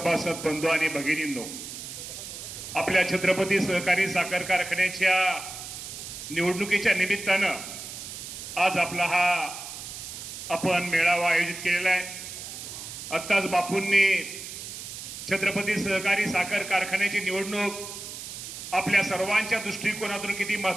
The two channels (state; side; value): noise; right; hiss, 10 dB below the sound